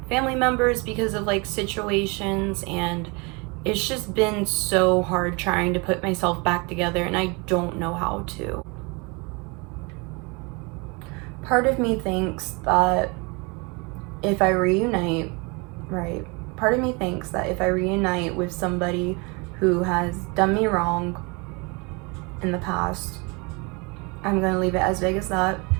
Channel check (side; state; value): left; quieter; 29.1 dB